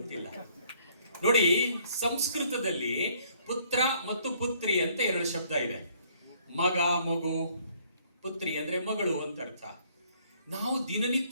ನೋಡಿ, ಸಂಸ್ಕೃತದಲ್ಲಿ ಪುತ್ರ ಮತ್ತು ಪುತ್ರಿ ಅಂತ 2 ಶಬ್ದ ಇದೆ. ಮಗ, ಮಗು. ಪುತ್ರಿ ಅಂದ್ರೆ ಮಗಳು ಅಂತ ಅರ್ಥ. ನಾವು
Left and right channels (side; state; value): both; inverted; correlation -0.62